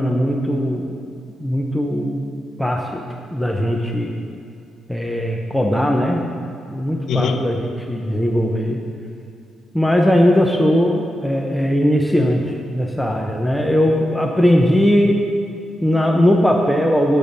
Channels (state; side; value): normal; both; correlation 0.90